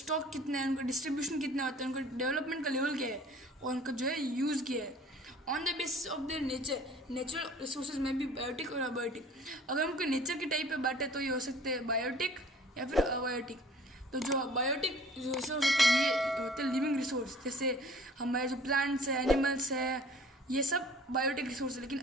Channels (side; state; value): both; normal; correlation 0.50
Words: कितना है, उनका डिस्ट्रीब्यूशन कितना होता है, उनका डेवलपमेंट का लेवल क्या है, और उनका जो है यूज़ क्या है। On the basis of their nature, natural resources में भी बायोटिक और अबायोटिक। अगर उनके नेचर के टाइप पे बांटे तो ये हो सकते हैं बायोटिक या फिर अबायोटिक। तो जो बायोटिक रिसोर्स होते हैं ये होते हैं लिविंग रिसोर्स, जैसे हमारे जो प्लांट्स है, एनिमल्स है, ये सब बायोटिक रिसोर्स है। लेकिन